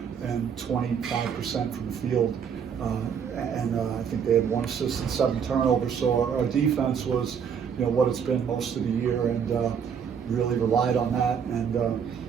and 25% from the field. I think they had 1 assist and 7 turnovers. So our defense was, what it's been most of the year, and really relied on that. And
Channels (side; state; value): left; quieter; 7.3 dB